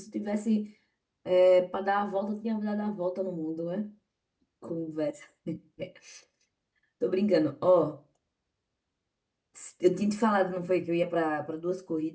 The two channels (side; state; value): both; identical; correlation 1.00